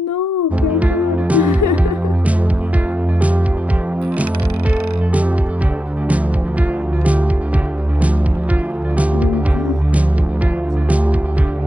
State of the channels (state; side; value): normal; both; correlation 0.89